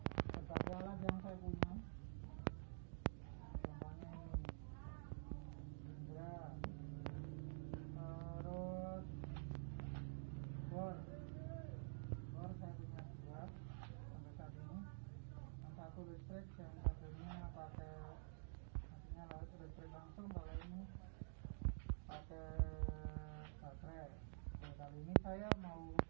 berbagai alat yang saya punya, contohnya ini Indra, terus bor saya punya dua sampai saat ini, yang satu listrik, yang satunya pakai maksudnya listrik langsung, kalau ini pakai baterai. Nah, kali ini saya mau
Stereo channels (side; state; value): left; silent; digital silence